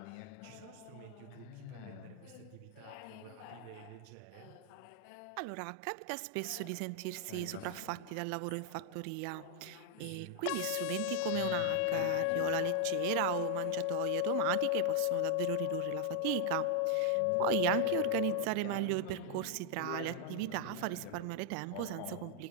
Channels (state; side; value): different; both; correlation 0.00